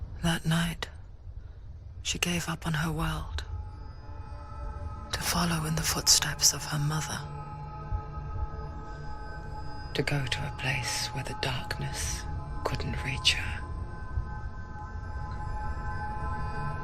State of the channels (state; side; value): identical; both; correlation 1.00